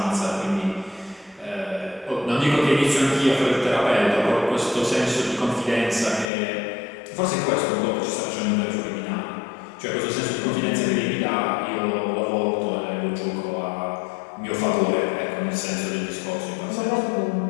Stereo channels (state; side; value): drops out; right; at 6.2 s